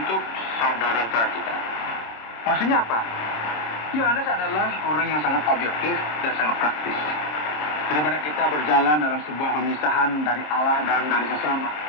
saudara-saudara kita. Maksudnya apa? Yohanes adalah orang yang sangat objektif dan sangat praktis. Daripada kita berjalan dalam sebuah pemisahan dari Allah dan dari sesama,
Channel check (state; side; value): late; right; 26 ms